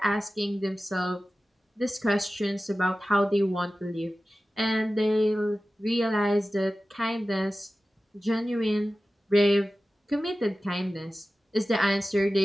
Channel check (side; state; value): both; normal; correlation 0.95